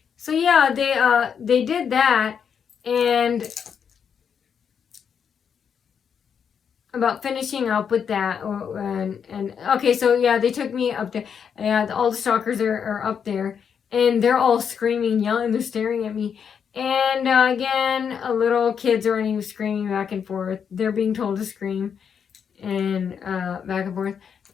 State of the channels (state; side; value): quieter; right; 7.3 dB